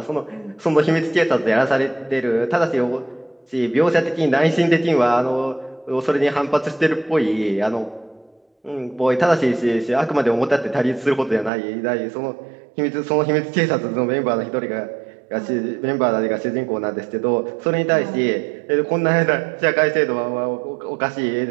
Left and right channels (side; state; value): left; drops out; at 11.5 s